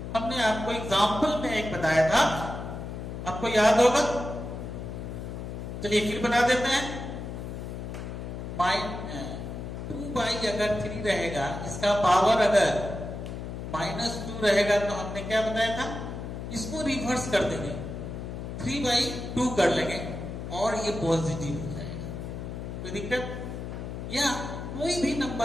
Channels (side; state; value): left; noise; hum, 7 dB below the sound